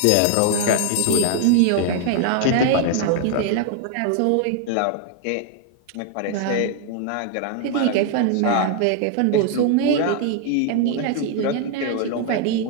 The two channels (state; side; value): different; both; correlation 0.00